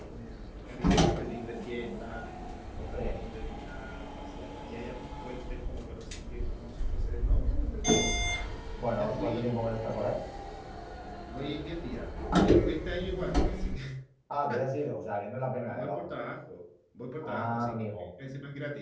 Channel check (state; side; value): identical; both; correlation 1.00